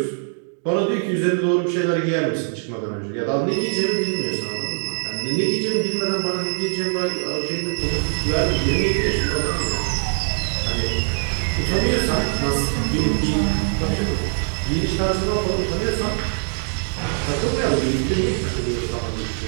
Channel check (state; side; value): silent; left; digital silence